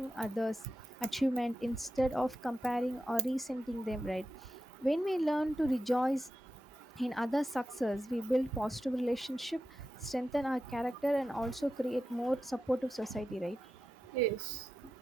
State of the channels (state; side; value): normal; both; correlation 0.91